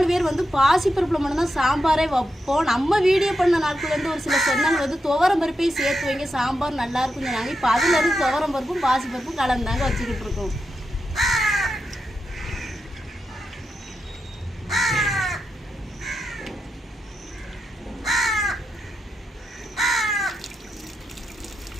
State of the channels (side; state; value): both; normal; correlation 0.87